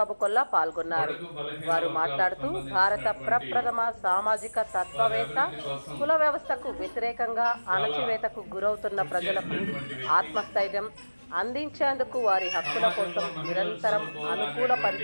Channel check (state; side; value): inverted; both; correlation -1.00